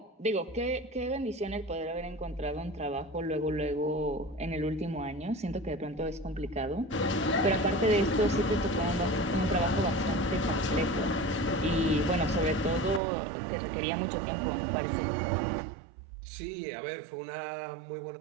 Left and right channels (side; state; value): left; drops out; at 13.0 s